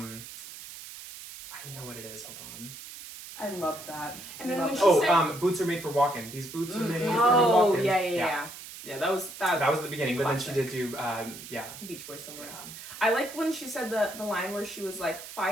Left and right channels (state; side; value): noise; right; hiss, 13 dB below the sound